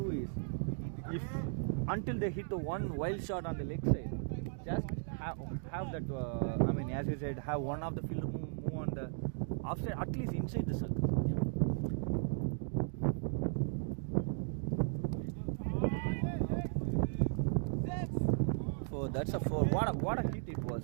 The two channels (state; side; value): silent; left; digital silence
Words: is, if until they hit the one wild shot on the leg side, just have that. I mean, as you said, have one of the fielder move on the offside, at least inside the circle. So that's a 4. What a hit it